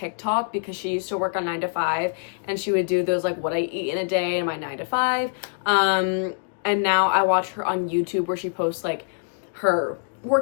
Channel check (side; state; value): right; silent; digital silence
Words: because she used to work on 9 to 5 and she would do those like what I eat in a day in my 9 to 5. And now I watch her on YouTube where she posts like her